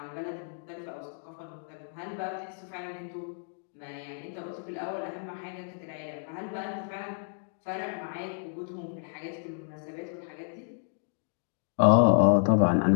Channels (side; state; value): right; silent; digital silence